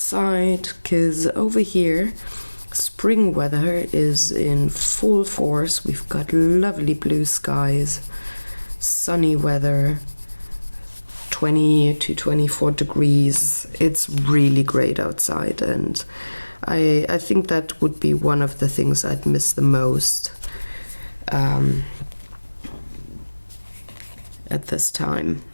because over here spring weather is in full force. We've got lovely blue skies, sunny weather, 20 to 24 degrees. It's really great outside, and I think that would be one of the things I'd miss the most at this time,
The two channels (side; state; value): both; inverted; correlation -1.00